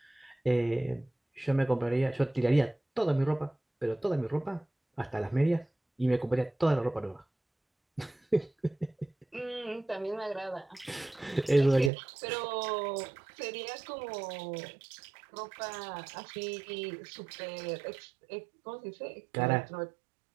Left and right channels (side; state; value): left; drops out; at 11.9 s